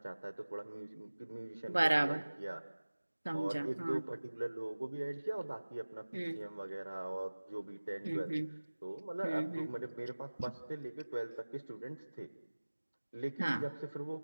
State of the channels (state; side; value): inverted; both; correlation -1.00